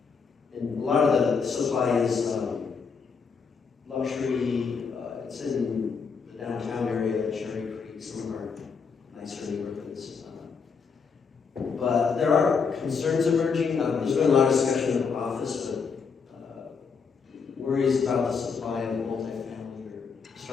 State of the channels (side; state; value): right; quieter; 5.6 dB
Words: And a lot of the supply is luxury. It's in the downtown area, Cherry Creek, some of our nicer neighborhoods. But there are concerns emerging. There's been a lot of discussion in the office, but worries about the supply of multifamily are